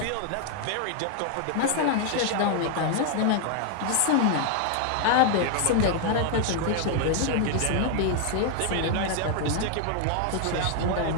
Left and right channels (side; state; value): both; different; correlation 0.00